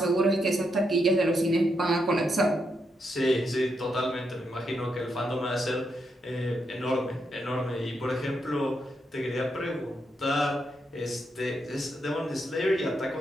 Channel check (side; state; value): both; normal; correlation 0.81